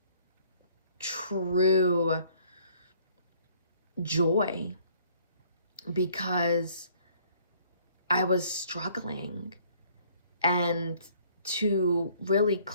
true joy. Because I was struggling. And to really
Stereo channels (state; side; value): inverted; both; correlation -0.60